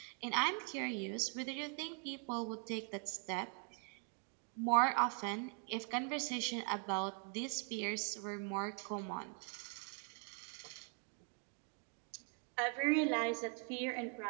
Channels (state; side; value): quieter; left; 39.8 dB